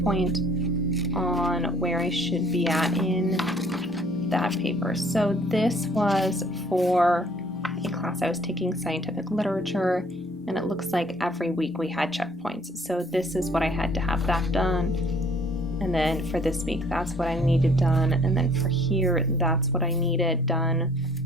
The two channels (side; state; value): both; normal; correlation 0.58